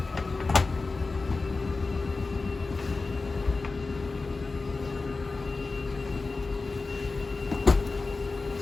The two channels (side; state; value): right; quieter; 3.8 dB